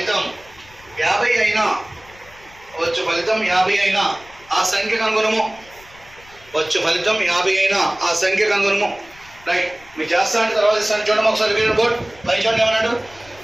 50 అయినా ఆ సంఖ్య కనుగొనము. వచ్చు ఫలితం 50 అయినా ఆ సంఖ్య కనుగొనము. రైట్, మీరు చేస్తా అంటే తర్వాత ఇస్తాను. చూడడం ఒకసారి బోర్డ్ పై చూడండి ఏమన్నాడు.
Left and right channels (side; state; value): left; noise; rumble, 25 dB below the sound